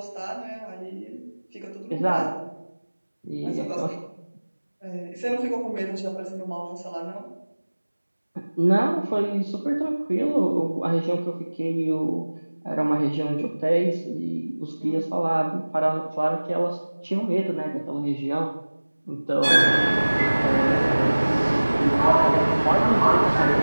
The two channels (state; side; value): inverted; both; correlation -1.00